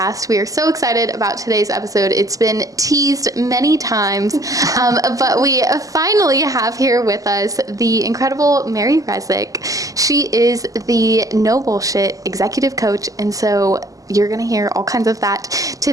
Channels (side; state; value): left; late; 0.17 ms